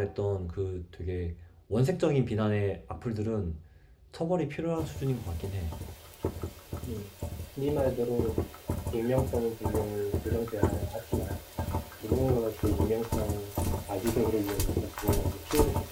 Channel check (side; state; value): both; identical; correlation 1.00